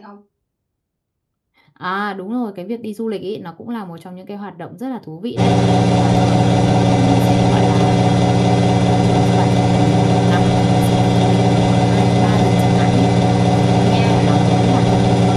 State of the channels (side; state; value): both; identical; correlation 1.00